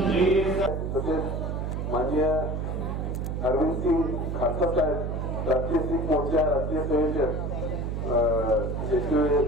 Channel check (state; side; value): noise; right; hum, 2 dB below the sound